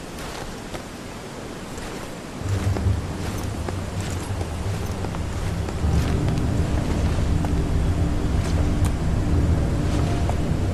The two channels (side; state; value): both; identical; correlation 1.00